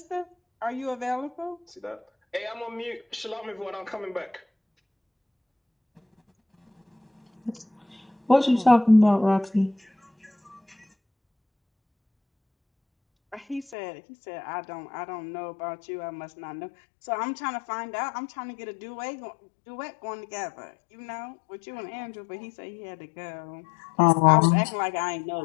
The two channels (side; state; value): right; drops out; at 13.8 s